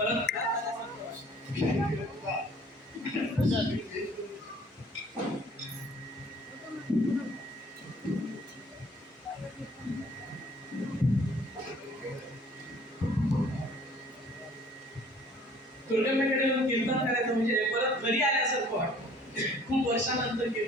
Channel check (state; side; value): normal; both; correlation 0.55